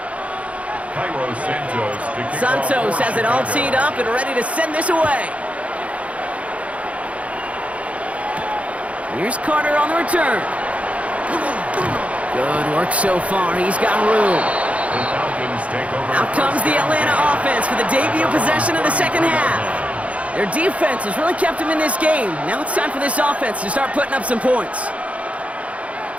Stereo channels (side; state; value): left; late; 0.065 ms